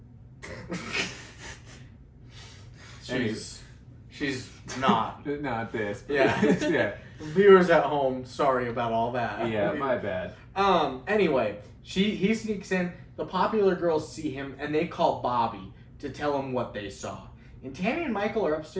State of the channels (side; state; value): both; identical; correlation 1.00